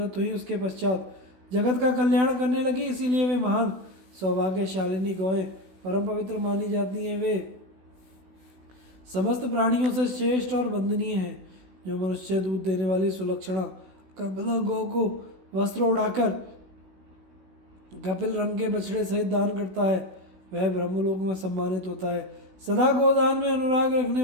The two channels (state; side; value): late; left; 16 ms